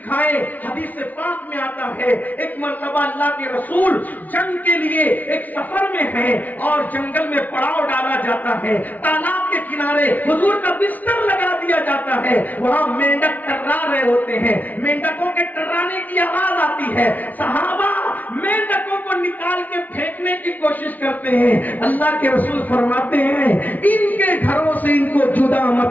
حدیث پاک میں آتا ہے ایک مرتبہ اللہ کے رسول جنگ کے لیے ایک سفر میں ہیں اور جنگل میں پڑاؤ ڈالا جاتا ہے، تالاب کے کنارے حضور کا بستر لگا دیا جاتا ہے، وہاں مینڈک ٹرا رہے ہوتے ہیں، مینڈکوں کے ٹرانے کی آواز آتی ہے، صحابہ مینڈکوں کو نکال کے پھینکنے کی کوشش کرتے ہیں۔ اللہ کے رسول فرماتے ہیں ان کے گھروں سے ان کو جدا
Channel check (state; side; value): late; right; 0.077 ms